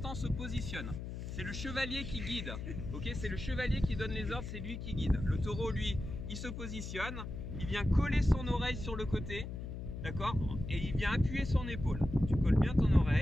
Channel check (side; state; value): left; noise; hum, 7 dB below the sound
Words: on se positionne. C'est le chevalier qui guide, ok? C'est le chevalier qui donne les ordres, c'est lui qui guide. Le taureau, lui, il se positionne, il vient coller son oreille sur le côté, d'accord? Et il vient appuyer son épaule. Tu colles bien ton